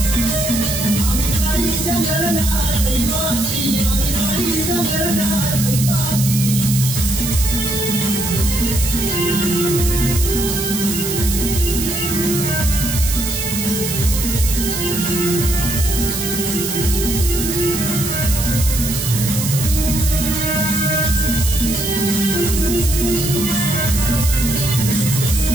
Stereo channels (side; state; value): right; noise; hiss, 4 dB below the sound